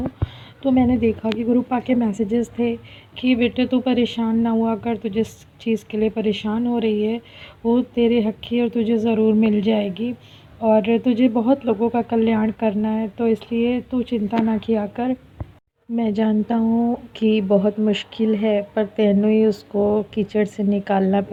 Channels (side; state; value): both; identical; correlation 1.00